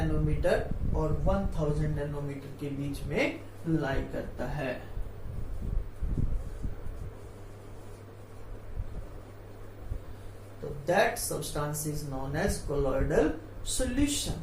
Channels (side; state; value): both; identical; correlation 1.00